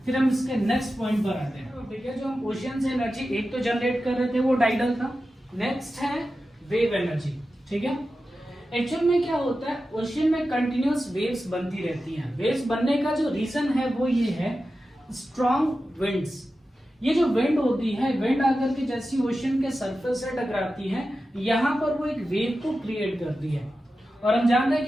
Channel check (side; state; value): both; normal; correlation 0.92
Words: फिर हम इसके नेक्स्ट पॉइंट पर आते हैं। ठीक है, जो हम ओशियन से एनर्जी एक तो जनरेट कर रहे थे वो टाइडल था। नेक्स्ट है वेव एनर्जी, ठीक है। एक्चुअल में क्या होता है, ओशियन में कंटिन्यूअस वेव्स बनती रहती हैं। वेव्स बनने का जो रीजन है वो ये है स्ट्रॉन्ग विंड्स। ये जो विंड होती है, विंड आकर के जैसी ओशियन के सरफेस से टकराती है, यहाँ पर वो एक वेव को क्रिएट करती है। और हम जानते हैं